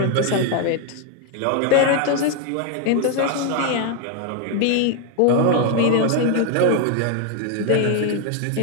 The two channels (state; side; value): different; both; correlation 0.01